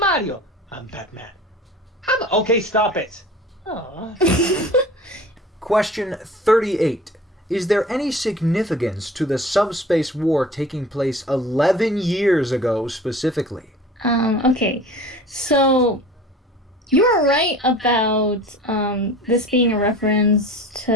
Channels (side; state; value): both; normal; correlation 0.41